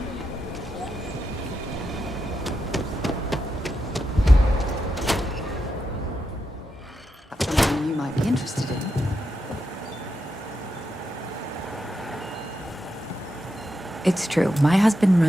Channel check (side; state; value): both; normal; correlation 0.86